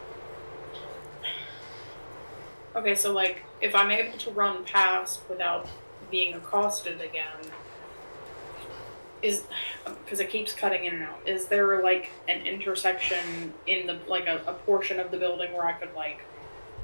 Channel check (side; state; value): both; inverted; correlation -1.00